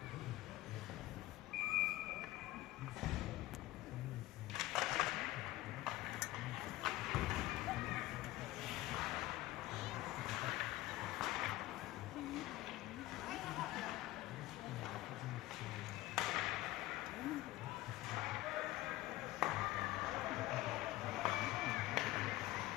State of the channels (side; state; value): right; quieter; 17.3 dB